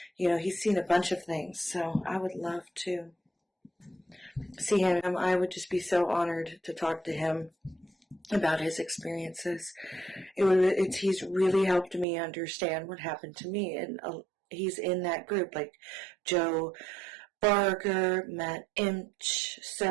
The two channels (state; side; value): drops out; left; at 12.1 s